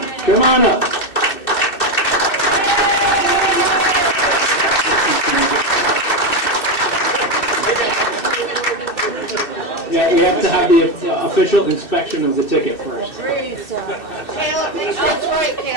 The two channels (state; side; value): late; right; 2.6 ms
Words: Come on up. Yeah, we have to have the official inspection of the ticket first. Caleb, that's right,